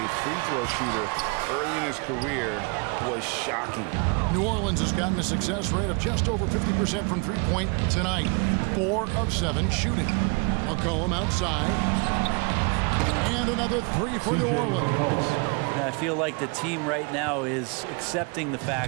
free throw shooter early in his career was shocking. New Orleans has gotten a success rate of just over 50% from three-point tonight. 4 of 7 shooting. McCollum outside. And another 3 for New Orleans. I feel like the team right now is accepting the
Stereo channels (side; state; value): left; quieter; 32.1 dB